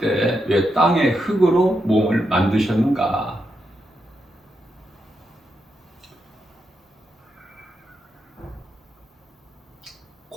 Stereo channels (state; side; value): normal; both; correlation 0.84